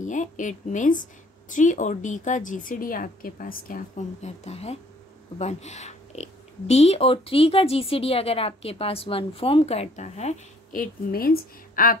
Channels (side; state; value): both; normal; correlation 0.59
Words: है, इट मीन्स 3 और d का GCD आपके पास क्या फॉर्म करता है? 1। d और 3 का GCD अगर आपके पास 1 फॉर्म करता है, इट मीन्स